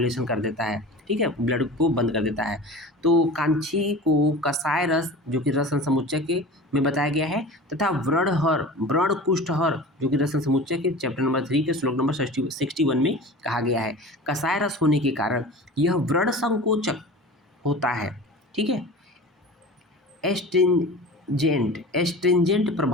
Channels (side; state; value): both; normal; correlation 0.36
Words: कर देता है, ठीक है, ब्लड को बंद कर देता है। तो कांची को कसाय रस जो कि रसन समुच्चय के में बताया गया है, तथा व्रणहर व्रण कुष्ठहर जो कि रसन समुच्चय के चैप्टर नंबर 3 के श्लोक नंबर 61 में कहा गया है। कसाय रस होने के कारण यह व्रण संकोचक होता है, ठीक है। एस्ट्रिंजेंट